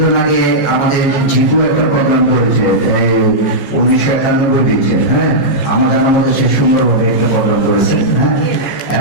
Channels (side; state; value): right; late; 14 ms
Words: আগে আমাদের জিতু একটা প্রোগ্রাম করেছে 1991 দিয়েছে, হ্যাঁ, আমার জানার মধ্যে সে সুন্দরভাবে একটা প্রোগ্রাম করেছে, হ্যাঁ,